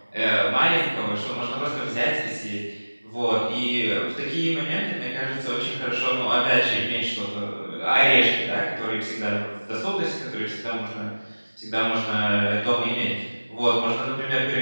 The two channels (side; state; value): both; inverted; correlation -1.00